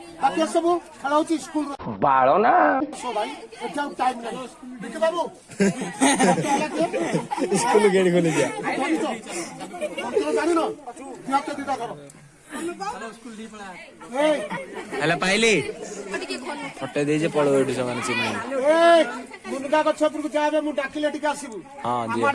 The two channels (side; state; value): both; identical; correlation 1.00